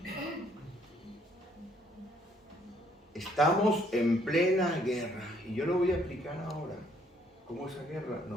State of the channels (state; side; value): normal; both; correlation 0.66